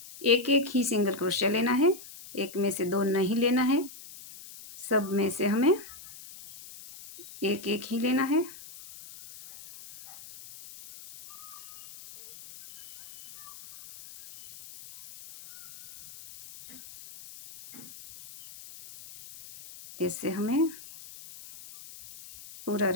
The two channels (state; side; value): noise; left; hiss, 17 dB below the sound